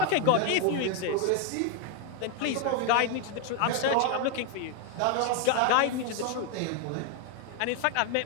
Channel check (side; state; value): both; different; correlation 0.01